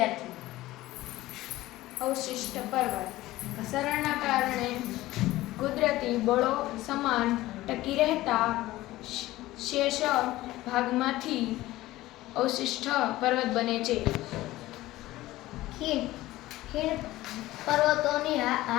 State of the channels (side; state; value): right; quieter; 16.9 dB